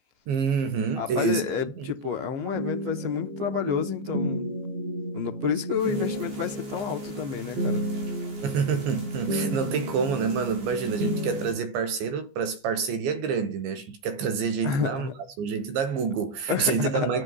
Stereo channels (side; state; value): left; late; 15 ms